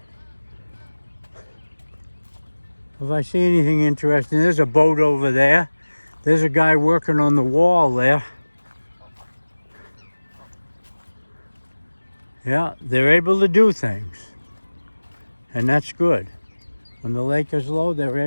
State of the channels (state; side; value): inverted; both; correlation -1.00